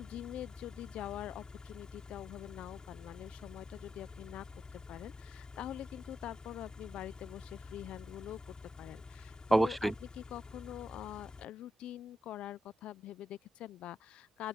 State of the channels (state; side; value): normal; both; correlation 0.84